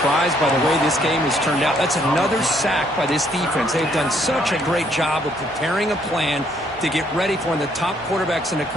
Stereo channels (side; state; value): both; normal; correlation 0.68